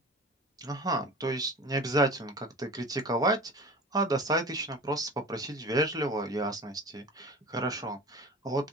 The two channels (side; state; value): both; normal; correlation 0.37